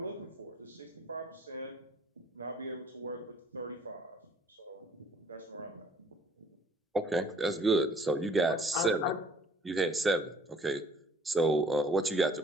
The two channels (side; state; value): both; normal; correlation 0.57